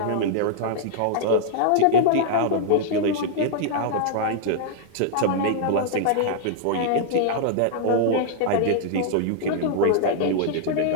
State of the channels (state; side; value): different; both; correlation -0.01